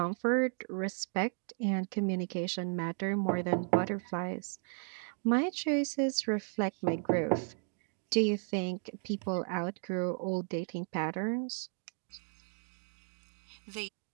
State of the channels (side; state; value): left; silent; 55 dB below the other